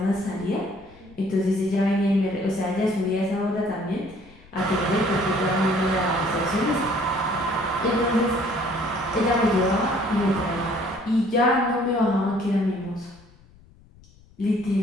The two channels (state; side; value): noise; left; rumble, 25 dB below the sound